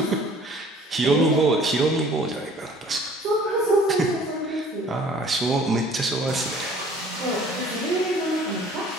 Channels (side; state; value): both; normal; correlation 0.53